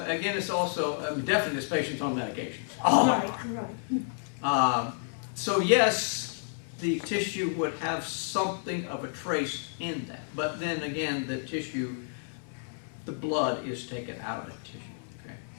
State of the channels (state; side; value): silent; right; 57 dB below the other